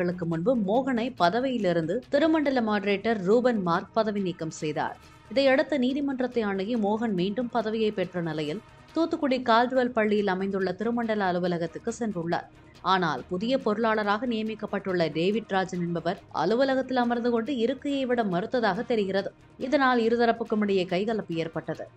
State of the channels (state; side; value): identical; both; correlation 1.00